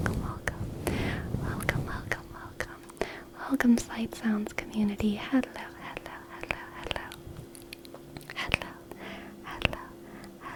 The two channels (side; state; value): both; identical; correlation 1.00